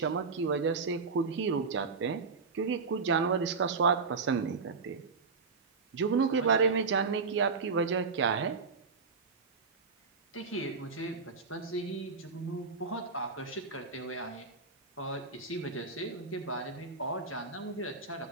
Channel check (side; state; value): left; quieter; 4.6 dB